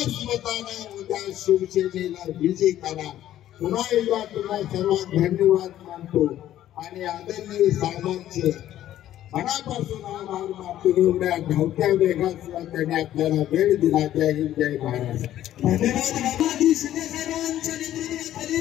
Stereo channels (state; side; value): quieter; right; 12.5 dB